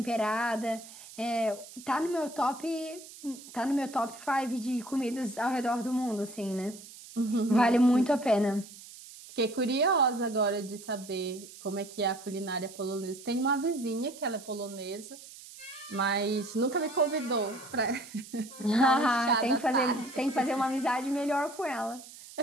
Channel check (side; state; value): right; noise; hiss, 17 dB below the sound